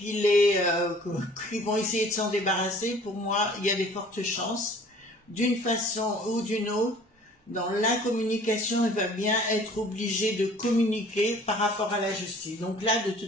vont essayer de s'en débarrasser, pour moi, il y a des fortes chances, d'une façon ou d'une autre. Dans la communication, il va bien être obligé de communiquer par rapport à la justice. Donc là, de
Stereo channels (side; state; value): both; normal; correlation 0.51